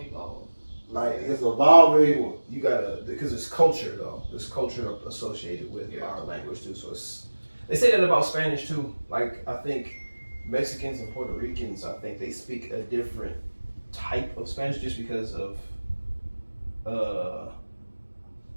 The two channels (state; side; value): inverted; both; correlation -1.00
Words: Like it's evolving. You gotta because it's culture though. There's culture associated with our language too. So they say that about Spanish too. Like I think Mexicans and Puerto Ricans, I think they speak a different type of Spanish just because of